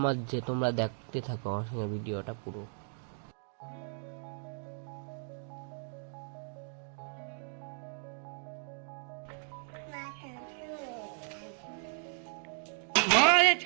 মাজছে, তোমরা দেখতে থাকো আমার সঙ্গে ভিডিওটা পুরো।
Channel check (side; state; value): left; silent; 54 dB below the other